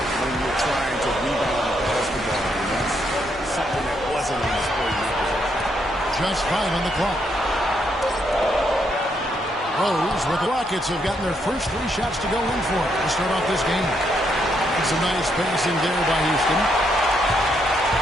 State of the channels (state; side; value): normal; both; correlation 0.76